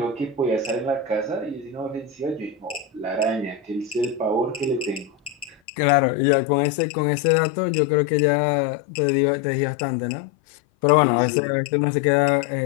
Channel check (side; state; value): right; drops out; at 5.6 s